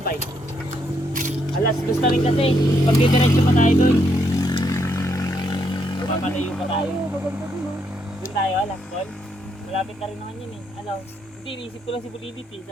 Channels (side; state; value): both; normal; correlation 0.76